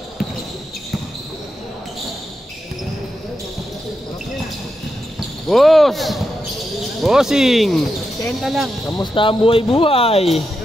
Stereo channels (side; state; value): both; normal; correlation 0.86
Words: Boss! Bossing! 10 lang. Kamusta ang buhay-buhay?